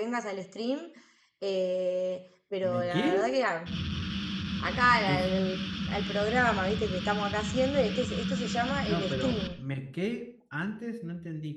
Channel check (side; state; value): both; identical; correlation 1.00